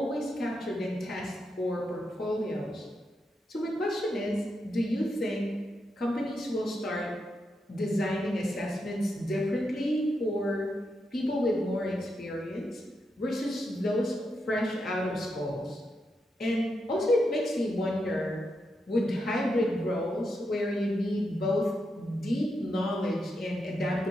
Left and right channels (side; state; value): both; normal; correlation 0.84